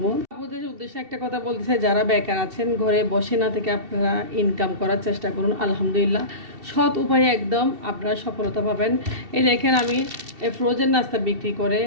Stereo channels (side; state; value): left; late; 2.7 ms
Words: আপনাদের উদ্দেশ্যে একটা কথা বলতে চাই, যারা বেকার আছেন ঘরে বসে না থেকে আপনারা ইনকাম করার চেষ্টা করুন। আলহামদুলিল্লাহ সৎ উপায়ে একদম আপনারা সফলতা পাবেন। এই দেখেন আমি ফ্রোজেন নাস্তা বিক্রি করে